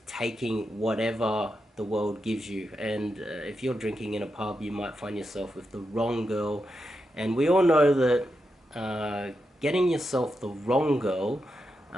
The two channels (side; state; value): both; normal; correlation 0.87